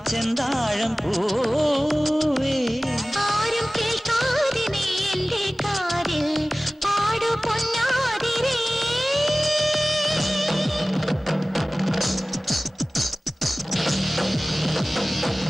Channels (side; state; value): both; normal; correlation 0.97